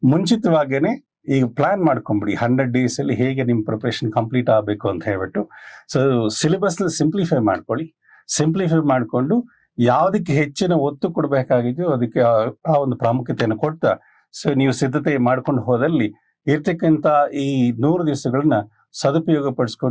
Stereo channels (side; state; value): both; identical; correlation 1.00